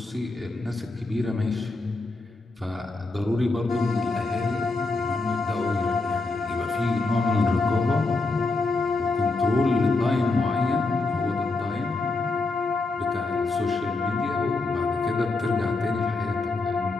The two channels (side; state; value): right; quieter; 3.5 dB